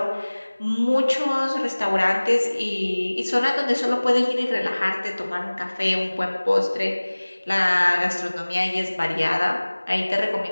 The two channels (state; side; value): inverted; both; correlation -1.00